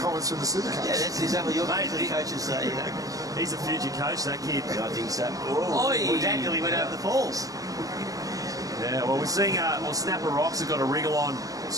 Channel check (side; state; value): left; late; 0.17 ms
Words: from the super coach. Yeah, that's exactly your coaches say. You know. He's a future coach, that kid. Yeah, I think so. Oh, Dad nearly went over the falls. Yeah, well, we're seeing Snapper Rocks have got a wriggle on